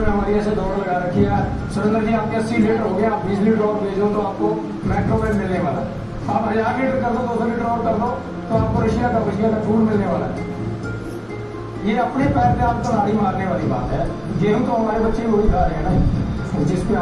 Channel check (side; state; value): both; identical; correlation 1.00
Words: हमारी ऐसे दौड़ लगा रखी है, सुरेंद्र जी आपके 80 लीटर हो गया, आप 20 लीटर और भेजो तो आपको मैक्रोवेव मिलने वाला है। आप 1000 लीटर कर दो, 200 लीटर और कर दो तो आपको रशिया का फूड मिलने वाला है। ये अपने पैर पे आपको लाड़ी मारने वाली बात है। गेहूं तो हमारे बच्चे वही खा रहे हैं ना, जिसपे